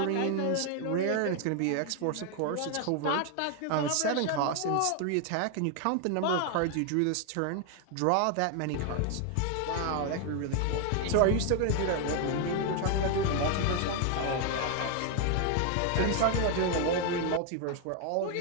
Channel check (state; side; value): different; both; correlation 0.01